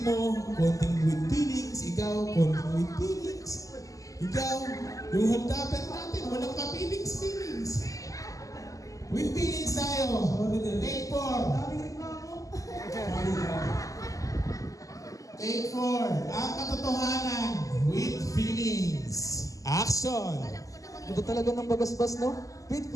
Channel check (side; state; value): right; late; 0.16 ms